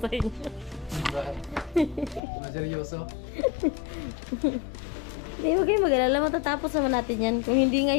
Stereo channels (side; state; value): right; drops out; at 2.2 s